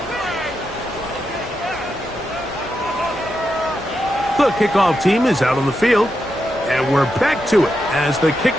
The kickoff team is out on the field. And we're back to it as the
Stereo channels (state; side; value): noise; left; hum, 20 dB below the sound